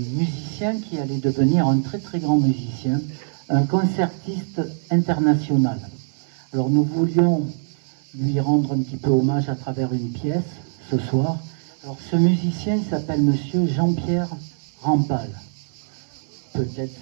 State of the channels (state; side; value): silent; left; 64 dB below the other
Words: qui allait devenir un très très grand musicien, un concertiste international. Alors nous voulions lui rendre un petit peu hommage à travers une pièce ce soir. Alors ce musicien s'appelle monsieur Jean-Pierre Rampal. Peut-être